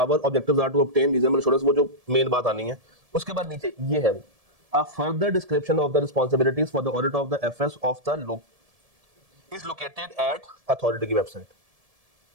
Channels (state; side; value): late; left; 1.7 ms